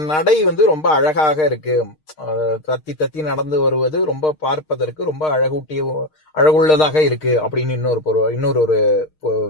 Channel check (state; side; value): late; right; 6.5 ms